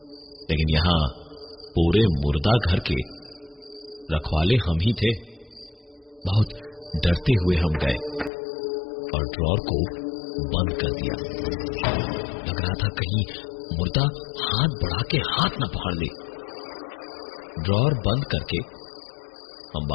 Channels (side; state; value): right; drops out; at 8.3 s